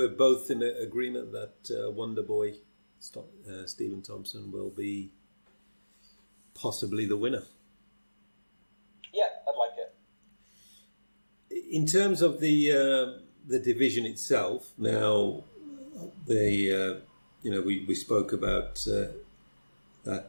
both in agreement that Wonderboy Stephen Thompson will be possibly the winner. Yeah, I'd like it. In terms of the division itself, now we spoke about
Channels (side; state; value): both; inverted; correlation -1.00